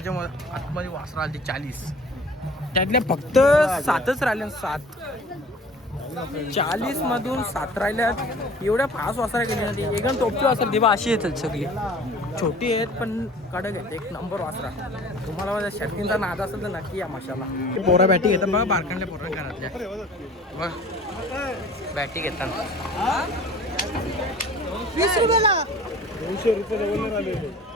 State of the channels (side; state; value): both; normal; correlation 0.46